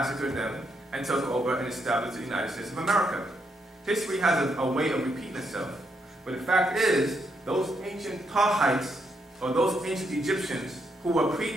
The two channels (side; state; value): both; normal; correlation 0.78